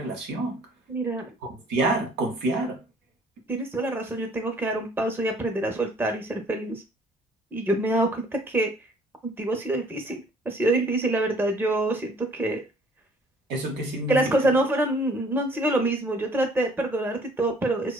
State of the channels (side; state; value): both; normal; correlation 0.57